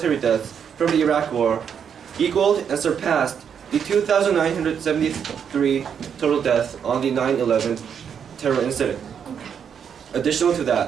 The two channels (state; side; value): quieter; left; 7.6 dB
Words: deaths from the Iraq War equaled and surpassed the 2,973 total deaths on the 9/11 terror incident. Additional to